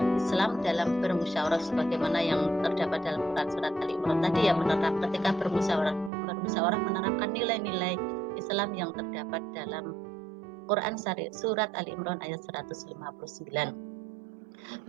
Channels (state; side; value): drops out; left; at 6.1 s